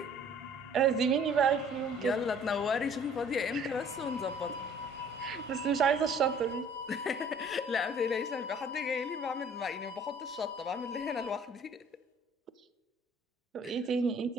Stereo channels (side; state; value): both; normal; correlation 0.54